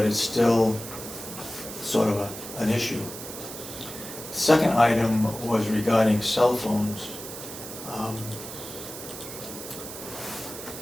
it's still sort of an issue. Second item was regarding cell phones.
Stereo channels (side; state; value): right; noise; hiss, 11 dB below the sound